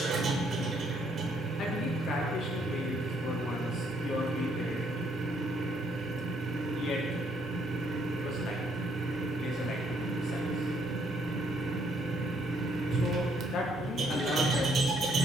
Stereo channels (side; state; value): both; normal; correlation 0.69